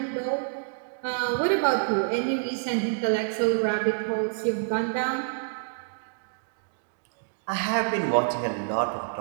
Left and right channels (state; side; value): silent; left; digital silence